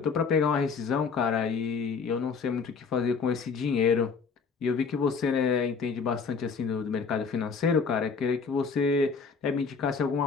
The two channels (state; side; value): quieter; right; 5.3 dB